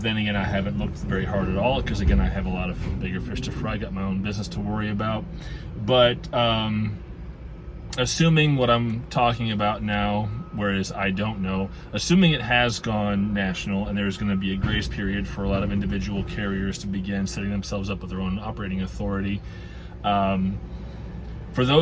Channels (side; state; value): both; identical; correlation 1.00